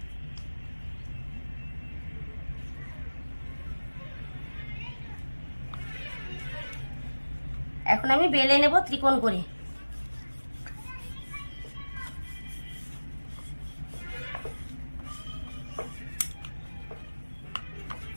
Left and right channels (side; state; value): both; inverted; correlation -1.00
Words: এখন আমি বেলে নেব ত্রিকোণ করে।